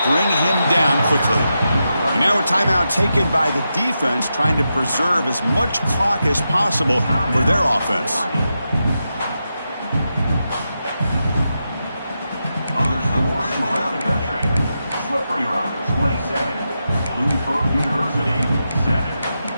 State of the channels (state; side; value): inverted; both; correlation -0.88